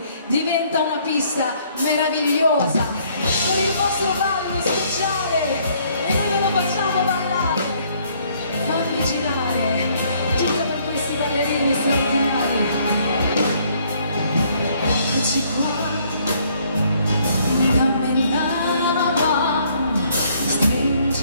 diventa una pista meravigliosa, con il vostro ballo speciale e noi ve lo facciamo ballare, fammi girare, tutta per questi ballerini straordinari, eccoci qua, dammi la mano,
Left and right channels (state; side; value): inverted; both; correlation -0.65